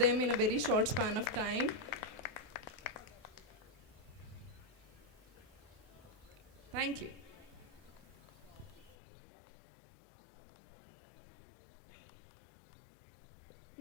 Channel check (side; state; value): right; drops out; at 9.0 s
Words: in a very short span of time. Thank you.